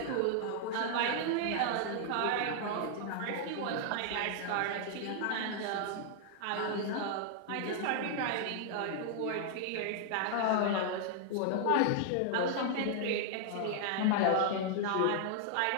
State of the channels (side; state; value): both; different; correlation -0.01